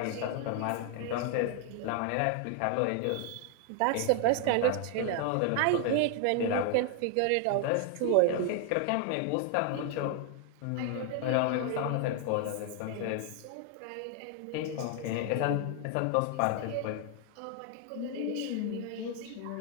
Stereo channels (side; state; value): both; different; correlation 0.00